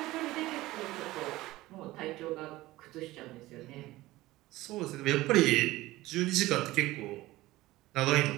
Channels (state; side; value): quieter; left; 17.9 dB